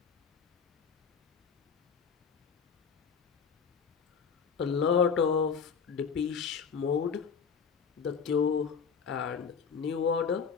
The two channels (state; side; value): quieter; right; 6.2 dB